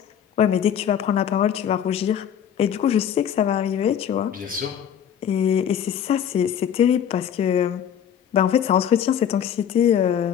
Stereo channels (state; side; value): quieter; right; 9.0 dB